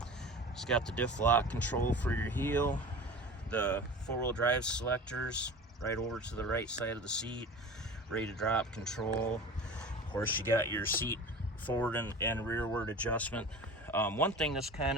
It's got the diff lock control for your heel. The 4-wheel drive selectors right over to the right side of the seat, ready to drop control. Of course, you got your seat forward and rearward adjustment. One thing that's kind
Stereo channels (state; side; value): normal; both; correlation 0.36